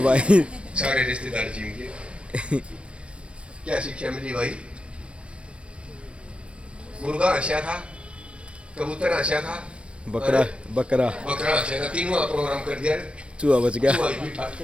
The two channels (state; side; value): late; left; 0.059 ms